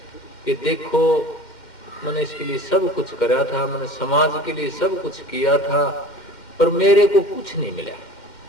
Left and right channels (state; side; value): late; right; 2.1 ms